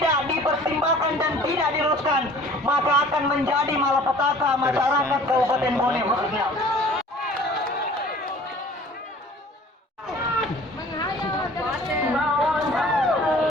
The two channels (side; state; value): both; normal; correlation 0.49